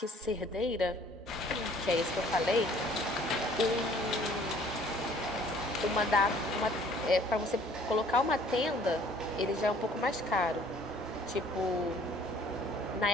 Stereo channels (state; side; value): normal; both; correlation 0.55